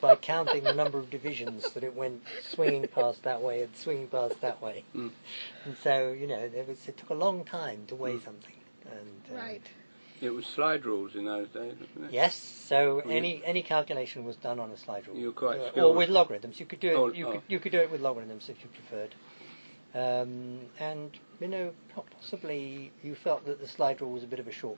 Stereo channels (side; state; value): both; inverted; correlation -1.00